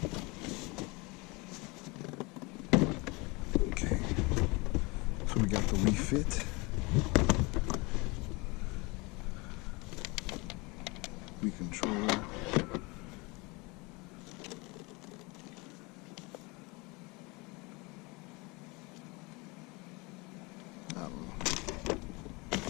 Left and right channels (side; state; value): right; quieter; 26.2 dB